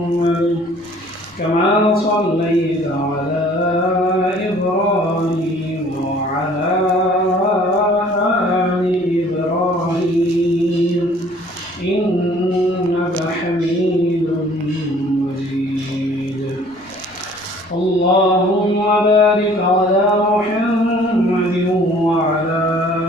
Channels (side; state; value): left; noise; rumble, 29 dB below the sound